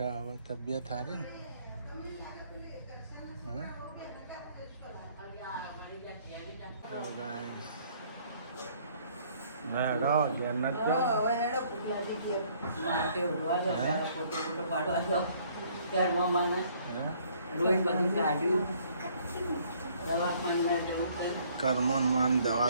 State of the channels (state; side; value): inverted; both; correlation -0.61